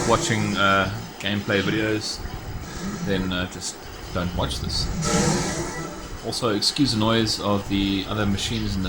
watching gameplay videos, then just don't watch this. Also, excuse the noise of the other machines in the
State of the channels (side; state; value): both; identical; correlation 1.00